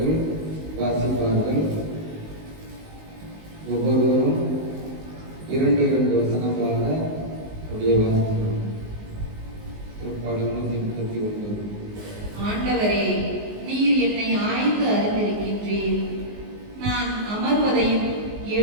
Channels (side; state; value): left; late; 19 ms